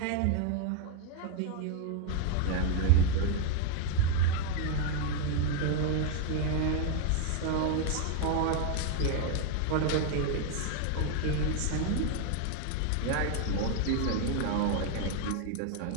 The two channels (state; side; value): different; both; correlation 0.01